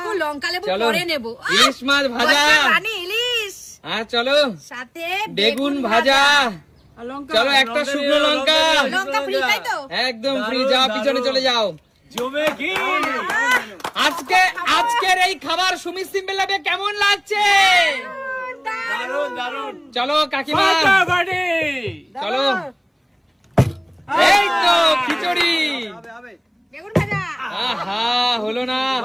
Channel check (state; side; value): identical; both; correlation 1.00